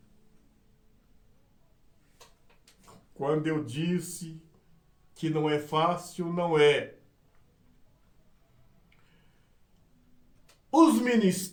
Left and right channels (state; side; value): identical; both; correlation 1.00